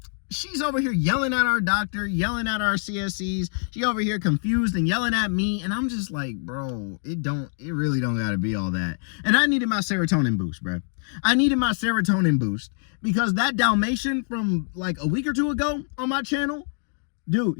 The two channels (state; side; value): silent; right; 62 dB below the other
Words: she's over here yelling at our doctor, yelling at our CSCs. She over here confused and yelling at me. And I'm just like, bro, it really don't gotta be all that. And I needed my serotonin boost, bro. I needed my serotonin boost because that Dalmatian from like a week or two ago on my channel, dude,